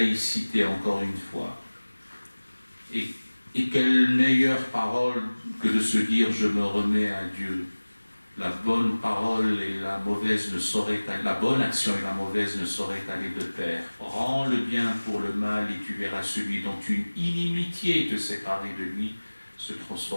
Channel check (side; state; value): both; inverted; correlation -1.00